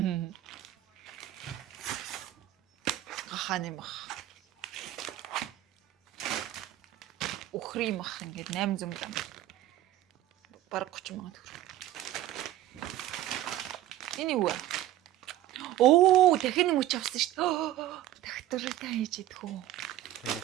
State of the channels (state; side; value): quieter; left; 13.9 dB